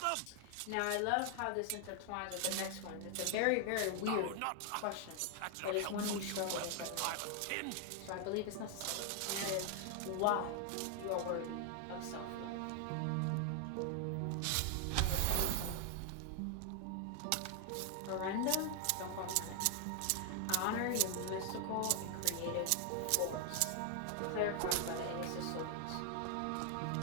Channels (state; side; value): different; both; correlation 0.00